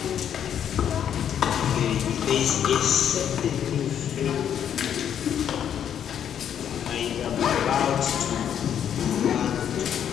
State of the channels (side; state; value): right; quieter; 9.2 dB